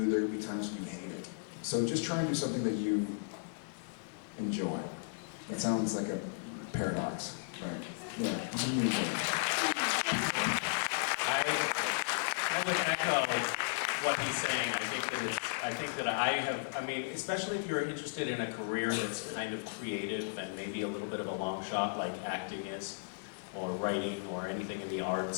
there will be times when you hate it. So just try and do something that you enjoy. That sounds like a paradox, right? Yeah, you enjoy it. I would echo what he's saying. I think that I mean, especially if you're interested in a career that's kind of creative and maybe a little bit of a long shot like acting is, or writing or anything in the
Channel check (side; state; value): right; silent; digital silence